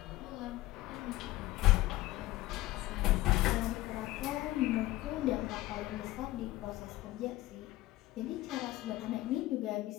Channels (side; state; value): right; quieter; 17.3 dB